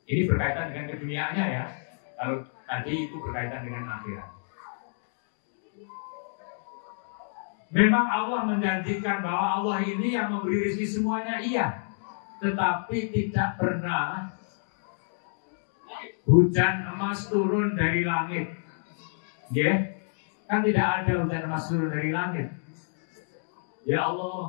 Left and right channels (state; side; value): silent; right; digital silence